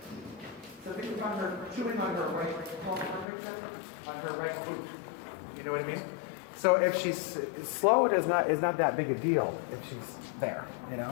So think of her chewing on her right palm, on her right boot. You know what I mean? So if she's slow, it is not that big a deal if she's there,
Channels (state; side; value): drops out; right; at 3.2 s